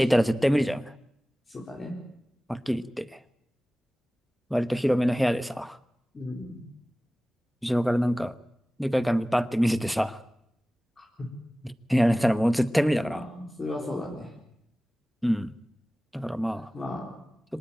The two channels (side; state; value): both; normal; correlation 0.98